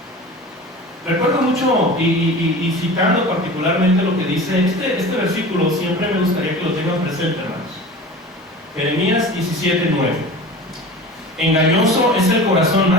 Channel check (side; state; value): both; normal; correlation 0.36